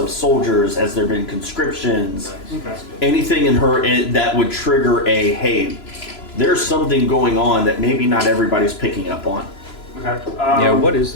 soldiers. Has there been conscriptions? Okay. Anything in her that would trigger a hey, there's something going on that maybe not everybody's picking up on. Okay. Yeah, what is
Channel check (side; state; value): right; late; 3.0 ms